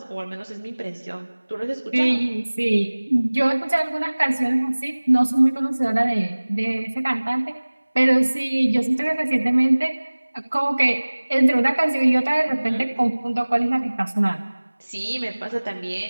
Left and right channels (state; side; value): inverted; both; correlation -1.00